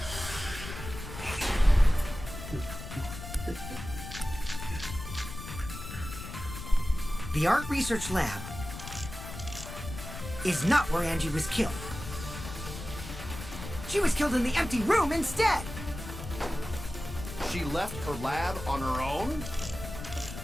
The art research lab is not where Angie was killed. She was killed in the empty room instead. She left her lab on her own?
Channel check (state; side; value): noise; left; rumble, 10 dB below the sound